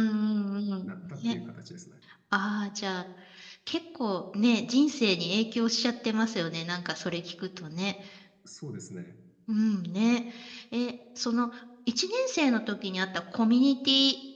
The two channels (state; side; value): identical; both; correlation 1.00